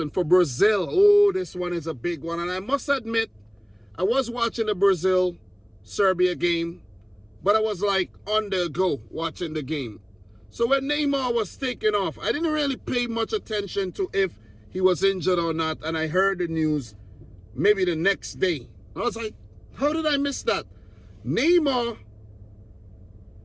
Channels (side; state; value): both; identical; correlation 1.00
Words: for Brazil. Oh, this one is a big one. And I must admit, I was watching the Brazil-Serbia game, but I was like on the go watching the game. So when Neymar was taken off, I didn't really pay much attention to if he was injured or not. And I heard the news maybe the next day. I was like, how did I miss that? Neymar